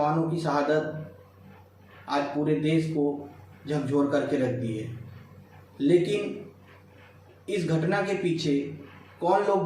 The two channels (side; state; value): both; identical; correlation 1.00